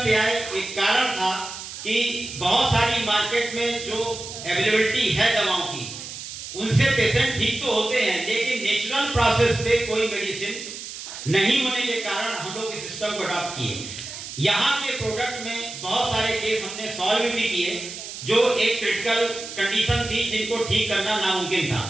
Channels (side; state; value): right; noise; hiss, 10 dB below the sound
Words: पे आए, एक कारण था कि बहुत सारी मार्केट में जो अवेलेबिलिटी है दवाओं की, उनसे पेशेंट ठीक तो होते हैं, लेकिन नेचुरल प्रोसेस पे कोई मेडिसिन नहीं होने के कारण हम लोग इस सिस्टम को अडॉप्ट किए। यहाँ के प्रोडक्ट में बहुत सारे केस हमने सॉल्व भी किए, जो एक क्रिटिकल कंडीशन थी जिनको ठीक करना नामुमकिन था,